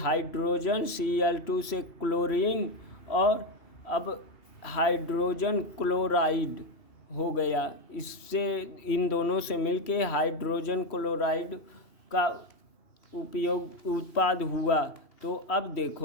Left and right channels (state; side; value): late; right; 2.8 ms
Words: Cl2 से क्लोरीन, और अब हाइड्रोजन क्लोराइड हो गया। इससे इन दोनों से मिलके हाइड्रोजन क्लोराइड का उत्पाद हुआ। तो अब